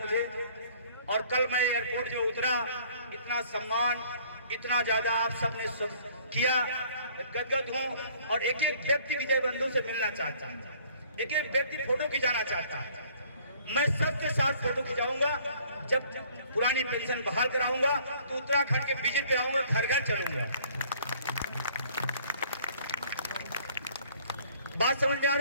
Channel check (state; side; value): inverted; both; correlation -0.57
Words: और कल मैं एयरपोर्ट जो उतरा, इतना सम्मान, इतना ज्यादा आप सबने किया, गदगद हूं। और एक एक व्यक्ति विजय बंधु से मिलना चाहता, एक एक व्यक्ति फोटो खिंचाना चाहता। मैं सबके साथ फोटो खिंचाऊंगा। जब पुरानी पेंशन बहाल कराऊंगा तो उत्तराखंड के विजिट पे आऊंगा, घर घर चलूंगा। बात समझ में आ